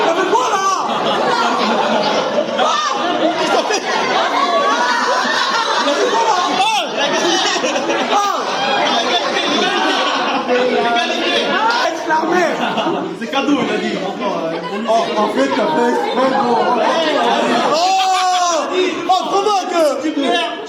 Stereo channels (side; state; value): both; identical; correlation 1.00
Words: l'armée. C'est cadeau, il a dit. Oh, en fait, t'as fait exprès, gros. Oh, comment que... Tu perds,